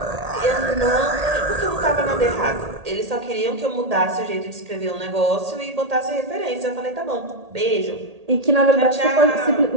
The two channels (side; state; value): left; late; 1.8 ms